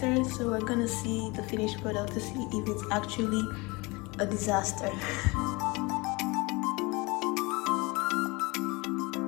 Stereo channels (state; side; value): quieter; right; 25.4 dB